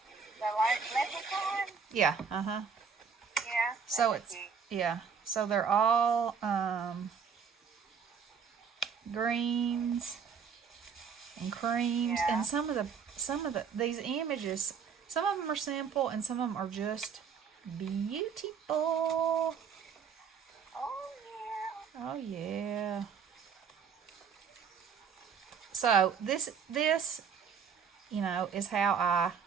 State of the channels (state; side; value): quieter; left; 6.4 dB